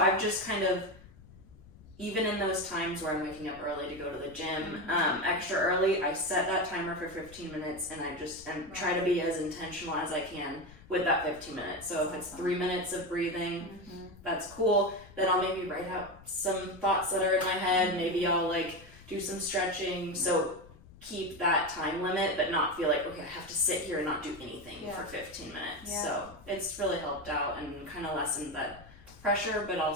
just kind of, even in those times where I'm waking up early to go to the gym, extra early, I set that timer for 15 minutes and I just try to be as intentional as I can with that 15 minutes. So if it's 3 minutes of breathing, that's cool. Then I'll maybe write out some thoughts that are in my head. Maybe I'll like do some stretching. So keep that time limit, but not feel like, okay, I have to sit here and not do anything for 15 minutes. So it's really helped out and kind of lessened that pressure, but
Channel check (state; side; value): noise; left; rumble, 21 dB below the sound